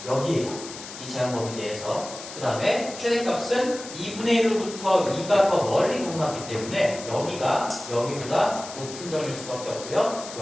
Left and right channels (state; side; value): noise; left; hiss, 12 dB below the sound